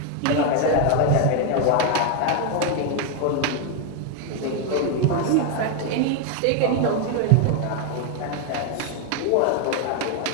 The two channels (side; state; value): both; different; correlation 0.01